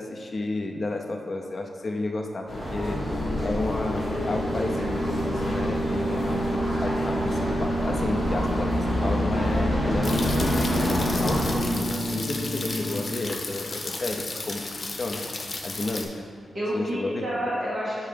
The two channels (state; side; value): normal; both; correlation 0.88